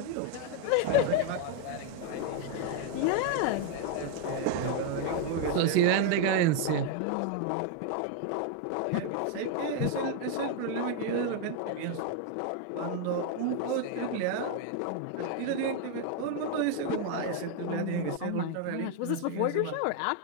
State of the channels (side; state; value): both; different; correlation 0.01